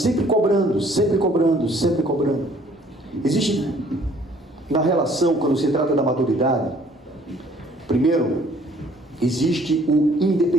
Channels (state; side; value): normal; both; correlation 0.58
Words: cobrando, sempre cobrando, sempre cobrando. Existe na relação, quando se trata da maturidade, primeiro, existe o